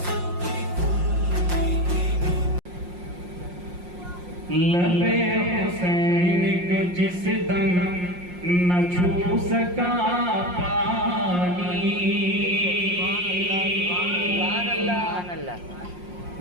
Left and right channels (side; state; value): left; late; 5.6 ms